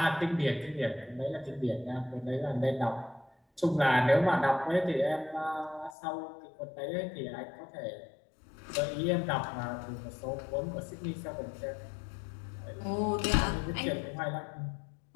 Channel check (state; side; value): drops out; right; at 6.0 s